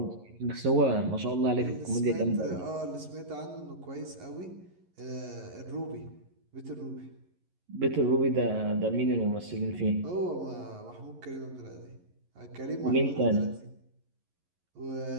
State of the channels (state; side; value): late; left; 11 ms